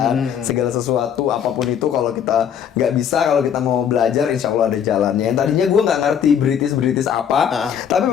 Segala sesuatu apapun itu kalau kita nggak bisa, kalau kita mau belajar insya Allah ada jalannya. Yang tadinya gue nggak ngerti British apa, tapi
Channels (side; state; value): right; quieter; 8.5 dB